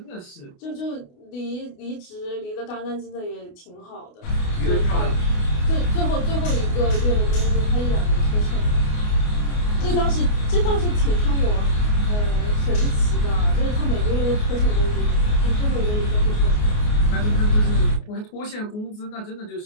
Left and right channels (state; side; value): late; right; 28 ms